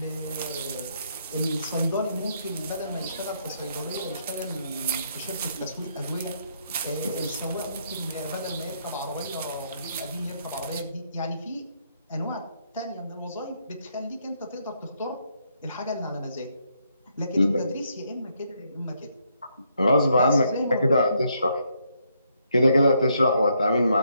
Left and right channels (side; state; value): both; inverted; correlation -0.74